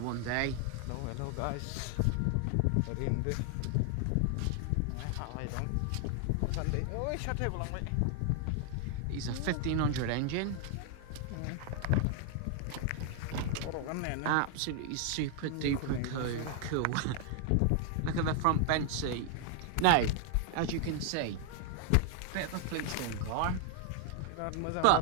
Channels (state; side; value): different; both; correlation 0.00